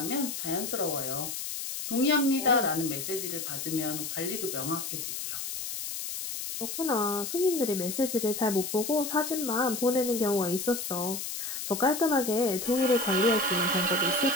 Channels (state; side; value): noise; left; hiss, 5 dB below the sound